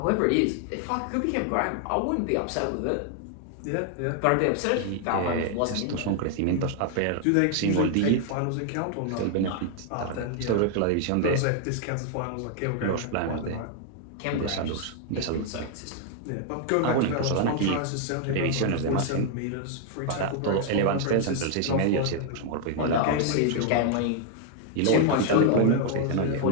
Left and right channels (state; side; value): different; both; correlation 0.00